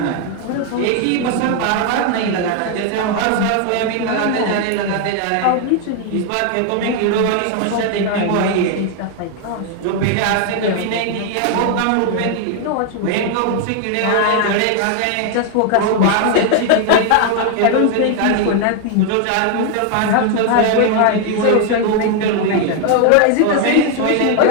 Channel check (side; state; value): both; different; correlation 0.00